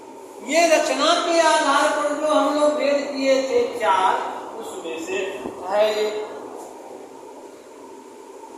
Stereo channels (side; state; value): both; identical; correlation 1.00